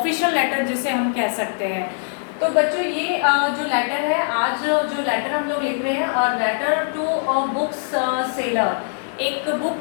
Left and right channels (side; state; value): right; silent; 63 dB below the other